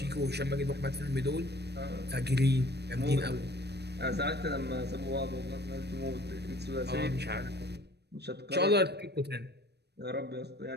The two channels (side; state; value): left; late; 0.48 ms